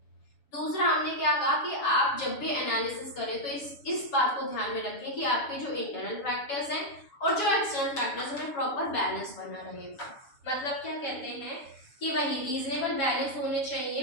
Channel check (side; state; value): right; late; 7.1 ms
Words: दूसरा, हमने क्या कहा कि आप जब भी एनालिसिस करें तो इस बात को ध्यान में रखें कि आपके जो इंटरनल फैक्टर्स हैं और जो एक्सटर्नल फैक्टर्स में प्रॉपर बैलेंस बना रहे। मतलब क्या कहते हैं कि वही रीजनेबल बैलेंस होने